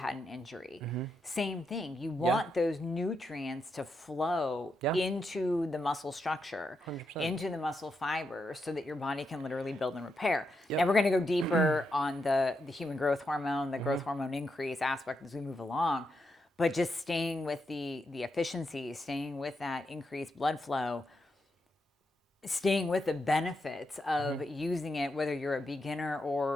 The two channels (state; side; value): normal; both; correlation 0.83